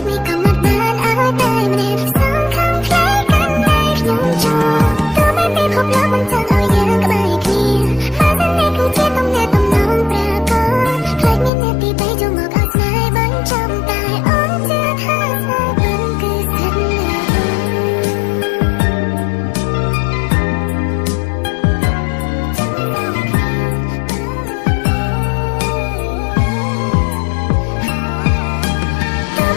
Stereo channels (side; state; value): right; drops out; at 11.5 s